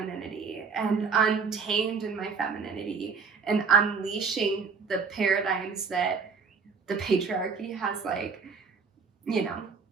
and untamed in my femininity and unleashing the paradigms that the patriarchy has, like,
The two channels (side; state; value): left; quieter; 5.3 dB